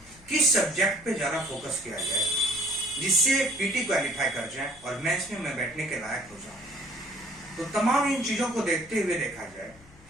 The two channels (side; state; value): left; noise; hum, 24 dB below the sound